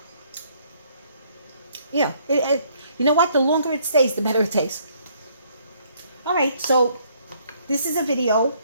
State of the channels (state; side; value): inverted; both; correlation -0.65